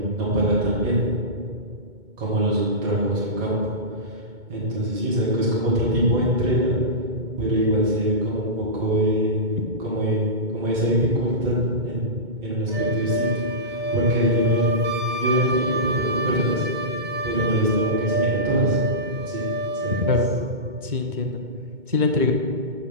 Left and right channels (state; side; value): late; left; 2.2 ms